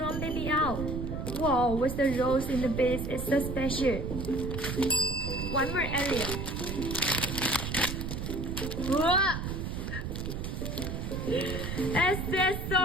baby owl. Wow, with the rose in the base, it's so special. One more area. Wow.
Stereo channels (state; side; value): noise; right; rumble, 4 dB below the sound